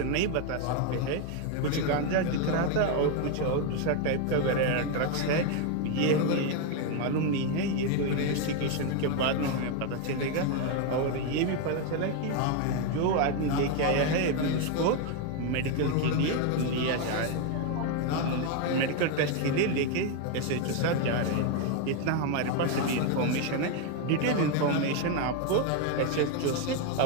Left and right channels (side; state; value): both; different; correlation 0.02